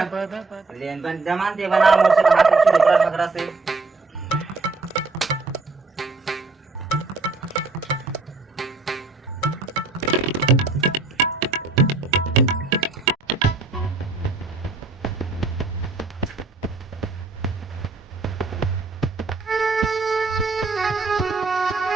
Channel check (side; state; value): left; quieter; 3.8 dB